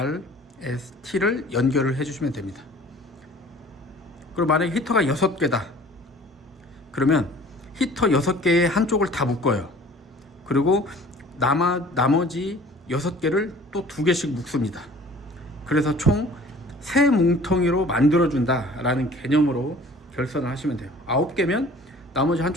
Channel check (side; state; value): both; normal; correlation 0.48